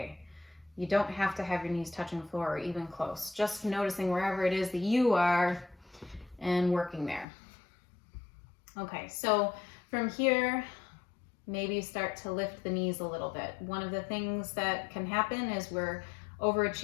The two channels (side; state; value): right; drops out; at 7.2 s